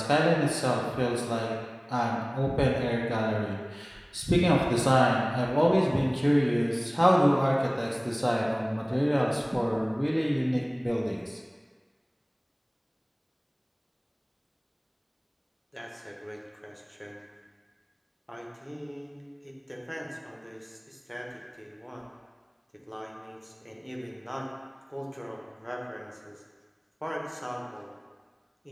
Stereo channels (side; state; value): both; identical; correlation 1.00